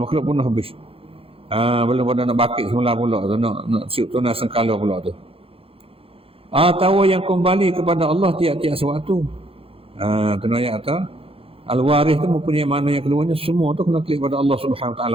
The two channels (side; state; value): left; late; 0.27 ms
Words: pun habis. Belum pada nak bakit semula pula tu, nak siup tunai sengkala pula tu. Atau yang kembali kepada Allah tiap-tiap sewaktu. Tu ayat tu. Al-Waris tu mempunyai makna yang keduanya, semua tu kena klik pada Allah Subhanahu Wa